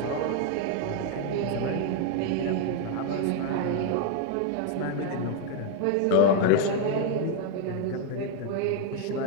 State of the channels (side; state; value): both; different; correlation 0.01